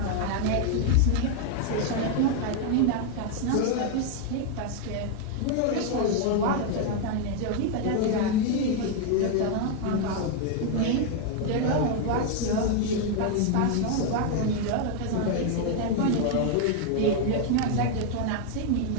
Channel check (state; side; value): different; both; correlation 0.00